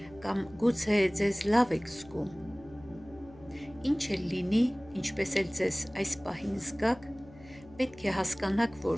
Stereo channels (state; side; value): noise; left; hum, 21 dB below the sound